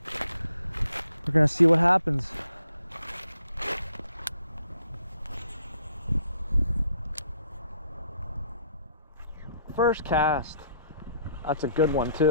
we're gonna see what happens. First cast. That's a good one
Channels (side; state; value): both; inverted; correlation -0.66